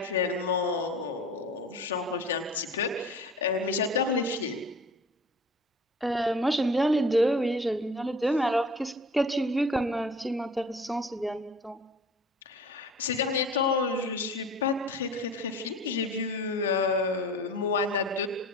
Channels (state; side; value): normal; both; correlation 0.42